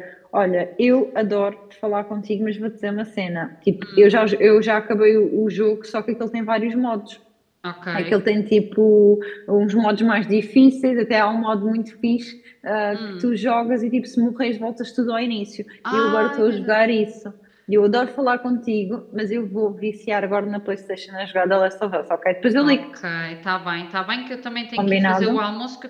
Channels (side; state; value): both; identical; correlation 1.00